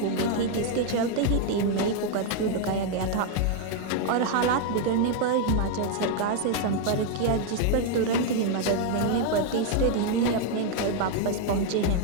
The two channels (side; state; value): both; different; correlation 0.00